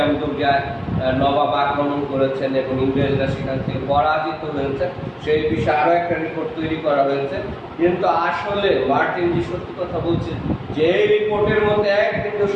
দুর্গায় নবাব আক্রমণ করেছেন এবং ইংরেজরা সেখান থেকে পরাজিত হয়েছে, সেই বিষয়ে আরো একটা রিপোর্ট তৈরি করা হয়েছে। কিন্তু আসলে মার্টিন যে সত্যি কথা বলছে যে এই রিপোর্টের মধ্যে এক কিন্তু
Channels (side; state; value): both; identical; correlation 1.00